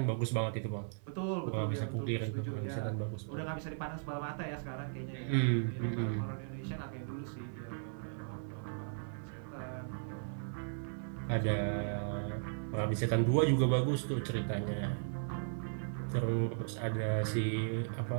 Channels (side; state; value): left; silent; 53 dB below the other